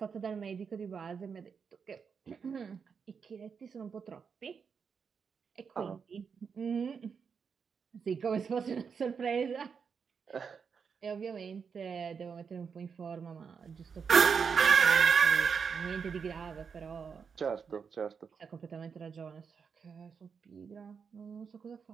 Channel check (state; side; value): quieter; left; 6.2 dB